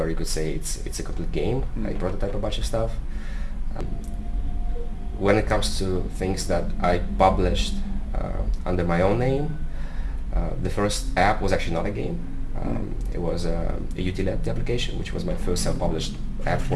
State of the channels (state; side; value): identical; both; correlation 1.00